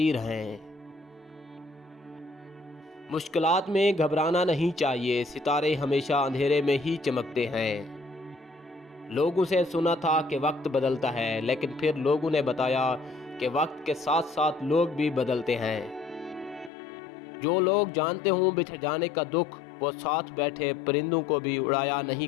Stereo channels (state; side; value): drops out; right; at 16.7 s